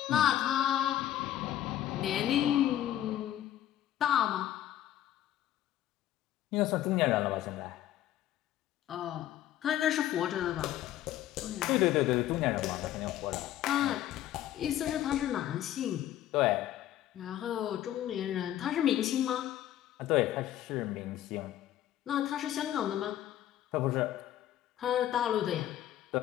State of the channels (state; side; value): quieter; right; 12.5 dB